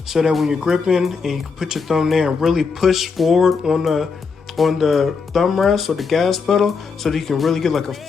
so that when you're gripping and you can put your thumb there and really push forward on the thumb rest or the gas pedal so that you can really get like a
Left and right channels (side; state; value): right; quieter; 5.2 dB